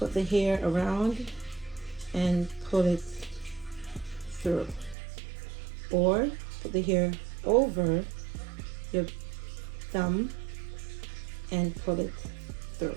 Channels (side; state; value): left; drops out; at 5.0 s